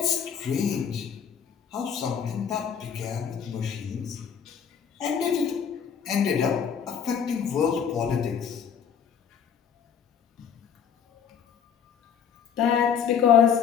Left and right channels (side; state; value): right; quieter; 7.6 dB